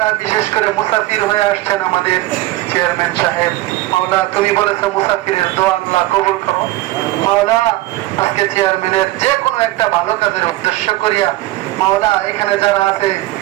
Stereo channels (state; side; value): quieter; left; 17.2 dB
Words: বিশেষ করে মুসাফির হয়ে আসছেন আমাদের চেয়ারম্যান সাহেব, মাওলা তুমি বলেছো মুসাফিরের দোয়া আল্লাহ কবুল করো। মাওলা আজকে চেয়ারম্যানের যে কোনো একটা ভালো কাজের উদ্দেশ্য করিয়া মাওলা এখানে যারা আছে